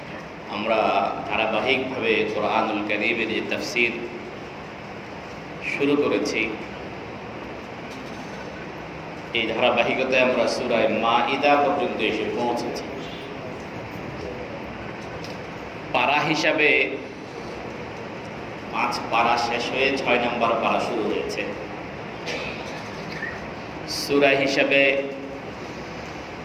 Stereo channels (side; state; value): both; identical; correlation 1.00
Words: আমরা ধারাবাহিকভাবে কোরআনুল কারীমের যে তাফসীর শুরু করেছি, এই ধারাবাহিকতায় আমরা সূরা মাঈদা পর্যন্ত এসে পৌঁছেছি। পারা হিসাবে 5 পারা শেষ হয়ে 6 নম্বর পারা শুরু হয়েছে। সূরা হিসাবে